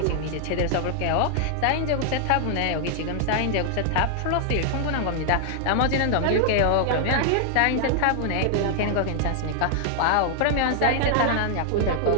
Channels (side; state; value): both; different; correlation 0.00